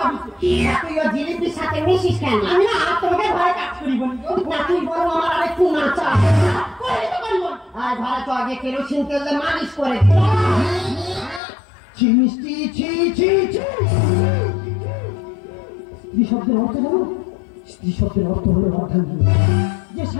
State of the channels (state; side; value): drops out; right; at 11.4 s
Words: তুই ও জিলিপির সাথে মিশিস কেন? আমি না তোমাকে ঘরে কাজ করি বলি না, তুই বলো আমার আরেকটু নাচা করে তো করিব। আর ঘরে তো আগে কেরোসিন তেল দিয়ে মালিশ করে ছি মিষ্টি, ছি ছি ছি। স্ত্রী শব্দের অর্থ জানো? স্ত্রী শব্দের অর্থ হলো অর্ধাঙ্গিনী, যে